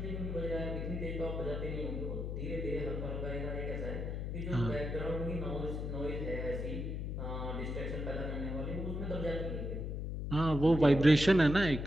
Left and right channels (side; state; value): left; noise; hum, 3 dB below the sound